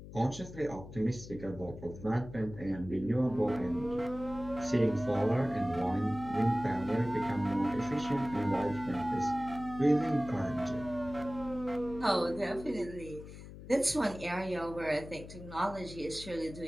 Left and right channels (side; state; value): left; noise; hum, 14 dB below the sound